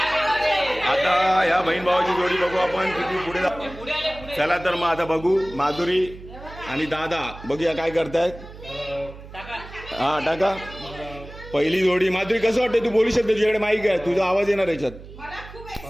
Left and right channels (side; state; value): right; noise; hum, 16 dB below the sound